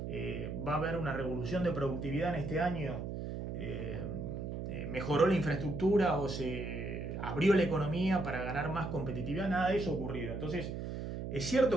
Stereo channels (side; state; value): right; noise; hum, 5 dB below the sound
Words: ¿Va a haber una revolución de productividad en este año? ¿Mejoró la infraestructura o se abrió la economía para ganar más competitividad? Nada de eso ha ocurrido. Entonces, es